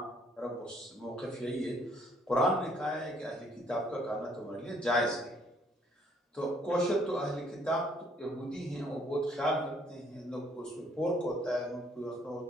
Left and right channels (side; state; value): both; normal; correlation 0.64